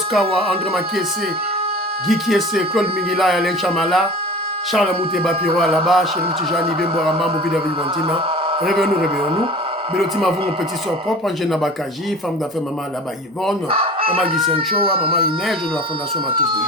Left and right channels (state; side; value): normal; both; correlation 0.40